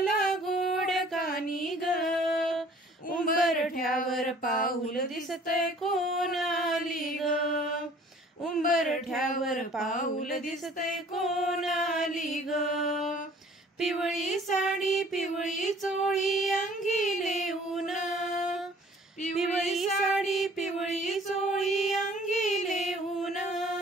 गोड कानी ग. उंबरठ्यावर पाऊल दिसतय कोण आली ग, उंबरठ्यावर पाऊल दिसतय कोण आली ग. पिवळी साडी पिवळी चोळी अंगी लेऊन, पिवळी साडी पिवळी चोळी अंगी लेऊन.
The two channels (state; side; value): normal; both; correlation 0.53